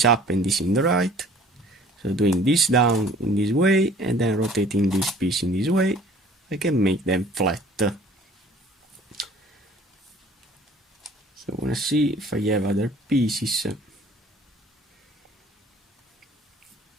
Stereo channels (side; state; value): both; normal; correlation 0.52